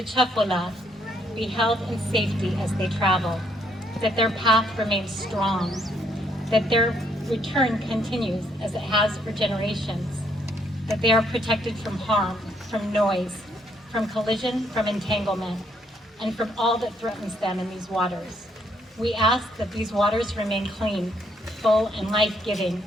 Chefwala be held in safety as they travel, that their path remains strong, that their return continues as it has for generations, that they are protected from harm, from noise, from collision, from entanglement, and from all that threatens them in these waters. We ask that these waters remain clean, full, and life-giving,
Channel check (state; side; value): normal; both; correlation 0.71